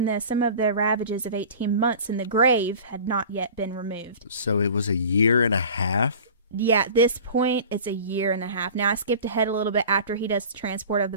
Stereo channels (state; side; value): inverted; both; correlation -0.39